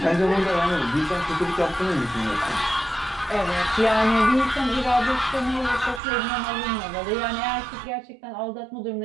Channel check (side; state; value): left; drops out; at 6.0 s